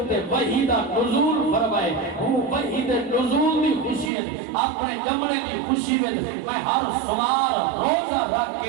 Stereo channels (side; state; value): left; drops out; at 4.1 s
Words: وحی دا نزول فرمائے ہوں وحی دے نزول دی خوشی ہے اپنے جمنے دی خوشی ہے میں ہر سمار روزہ رکھ